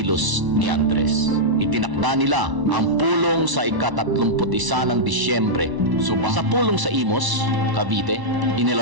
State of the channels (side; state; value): left; late; 1.0 ms